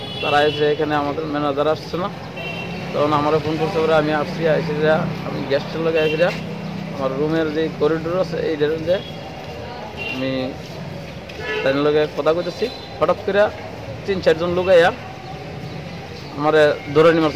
তারা এসে এখানে আমাদের ম্যানেজার আসছে না তখন আমার ফোন করতে পরে আমি আসছি আইছিরা আমি গেস্টের লগে আইছিরা আমার রুমের যে করিডোর আছে এইটার মধ্যে আমি তার লগে কথা কইতেছি হঠাৎ করে 3-4 জন লোক আইয়া আমার ধরে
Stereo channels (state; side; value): identical; both; correlation 1.00